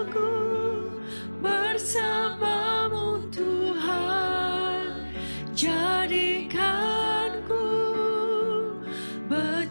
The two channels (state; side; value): inverted; both; correlation -1.00